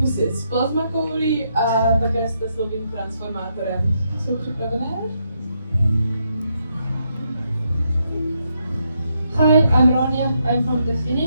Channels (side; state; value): both; inverted; correlation -0.78